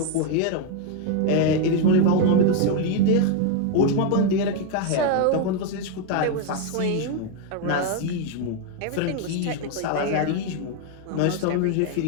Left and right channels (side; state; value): both; different; correlation 0.01